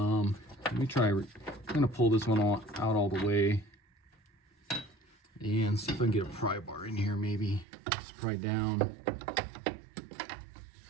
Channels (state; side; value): drops out; left; at 7.7 s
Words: me try. I'm gonna pull this one out all the way and see if I can get a pry bar in here. Maybe just pry down.